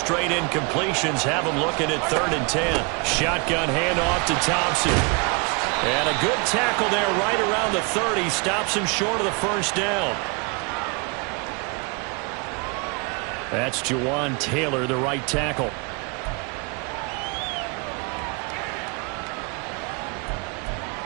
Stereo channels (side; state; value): left; quieter; 31.5 dB